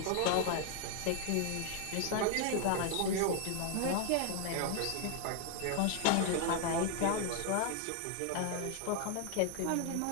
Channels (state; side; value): different; both; correlation 0.00